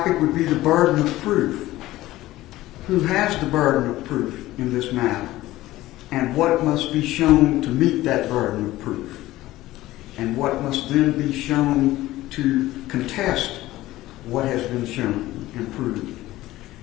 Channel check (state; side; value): quieter; right; 16.5 dB